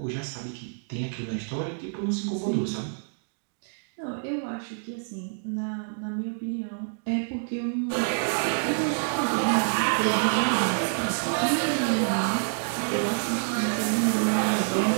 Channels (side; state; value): left; silent; digital silence